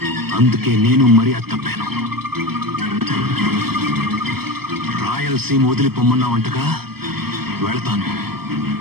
అందుకే నేను మర్యాద తప్పాను. రాయలసీమ వదిలిపోమ్మన్నావంటగా, వెళతాను.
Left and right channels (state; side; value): late; left; 0.96 ms